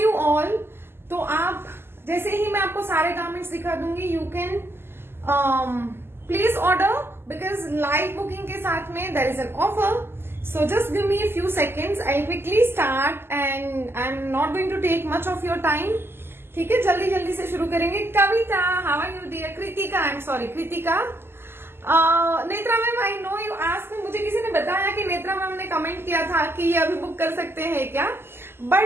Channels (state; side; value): late; left; 0.12 ms